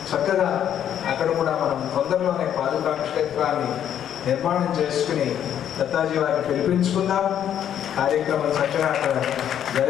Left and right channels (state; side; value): quieter; right; 9.9 dB